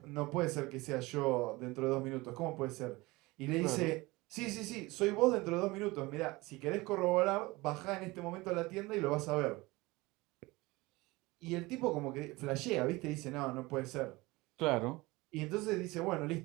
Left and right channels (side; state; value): left; quieter; 21.9 dB